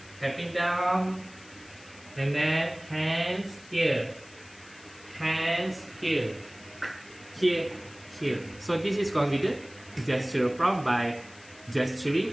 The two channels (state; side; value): noise; left; hiss, 22 dB below the sound